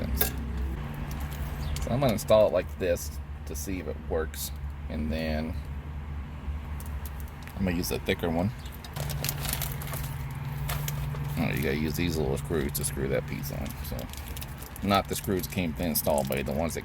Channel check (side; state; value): both; identical; correlation 1.00